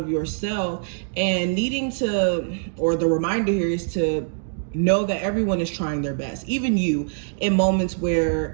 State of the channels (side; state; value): left; silent; digital silence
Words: yourself, and needing to, or the reminder here is to know that everyone is trying their best, even you, in moments